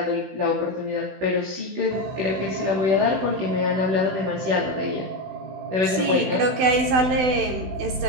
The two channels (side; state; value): left; late; 16 ms